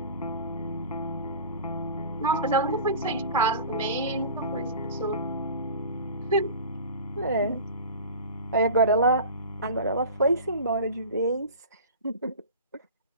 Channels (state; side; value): inverted; both; correlation -0.37